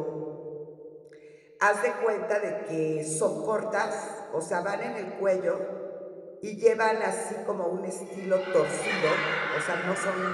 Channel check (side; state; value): both; identical; correlation 1.00